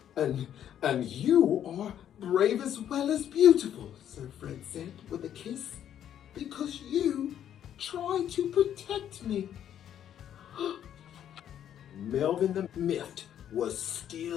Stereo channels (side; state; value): right; quieter; 10.1 dB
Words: And you are brave as well as beautiful, Sir Fred said with a kiss, because you tried to protect me. Melvin the Miffed was